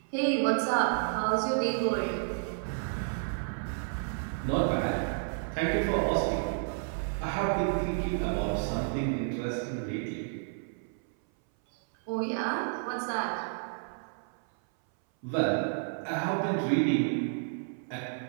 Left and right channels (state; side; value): silent; left; 57 dB below the other